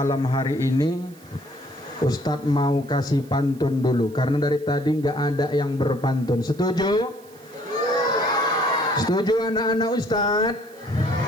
hari ini, ustadz mau kasih pantun dulu karena dari tadi nggak ada yang berpantun. Setuju? Setuju anak-anak ustadz?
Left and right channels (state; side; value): noise; right; hiss, 26 dB below the sound